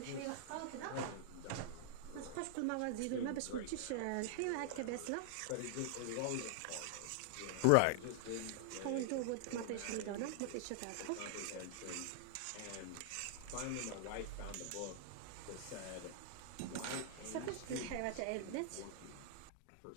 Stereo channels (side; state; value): both; different; correlation 0.00